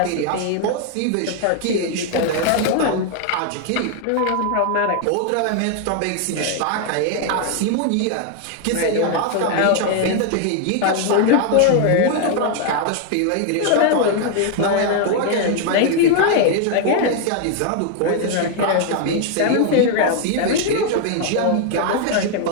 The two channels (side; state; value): both; different; correlation 0.00